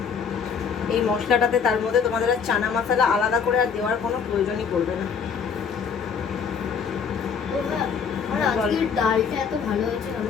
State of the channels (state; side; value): quieter; right; 6.4 dB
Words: এই মশলাটাতে, তার মধ্যে তোমাদের আর চানা মশলা আলাদা করে আর দেওয়ার কোনো প্রয়োজনই পড়বে না। ডালটা এত ভালো হয়েছে,